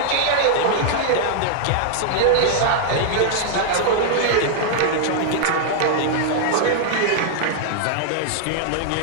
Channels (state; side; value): different; both; correlation -0.01